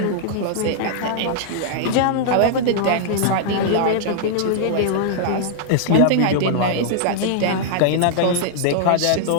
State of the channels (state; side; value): different; both; correlation -0.01